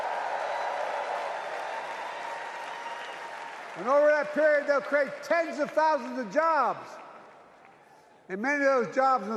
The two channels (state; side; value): identical; both; correlation 1.00